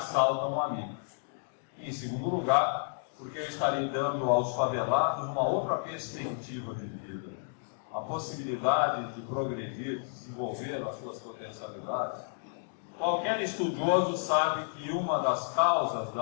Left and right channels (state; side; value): silent; right; digital silence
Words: um amigo. E, em segundo lugar, porque eu estarei dando aos favelados uma outra perspectiva de vida, a possibilidade de progredir, de desenvolver as suas potencialidades. Qualquer estudioso sabe que uma das causas